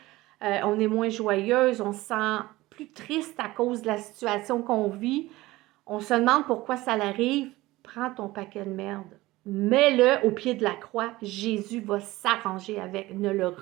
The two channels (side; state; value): left; quieter; 18.7 dB